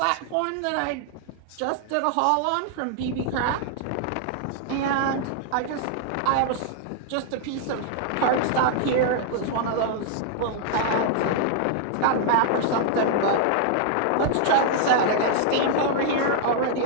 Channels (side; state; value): both; different; correlation -0.01